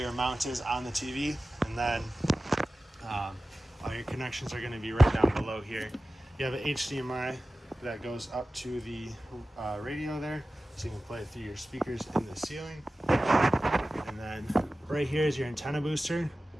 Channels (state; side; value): normal; both; correlation 0.95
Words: mount is on the TV. And then all your connections are going to be right down below here. You have an HDMI that goes up to the radio there, so you can play it through your speakers in the ceiling. And then right here is your antenna booster.